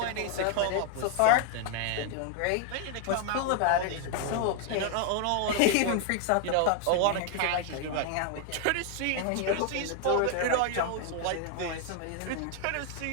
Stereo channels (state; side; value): different; both; correlation 0.00